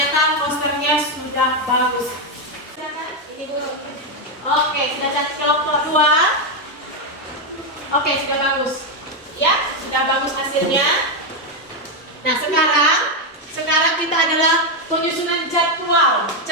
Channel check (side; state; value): both; normal; correlation 0.05